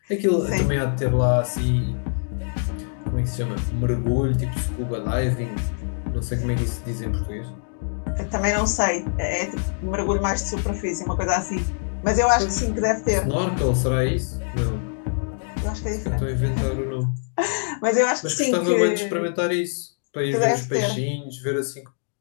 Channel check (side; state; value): right; silent; digital silence